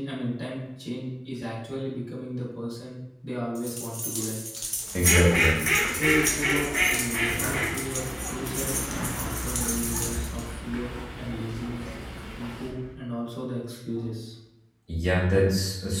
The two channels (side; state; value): both; identical; correlation 1.00